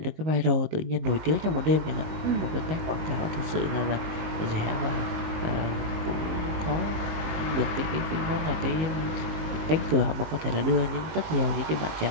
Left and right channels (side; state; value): left; late; 19 ms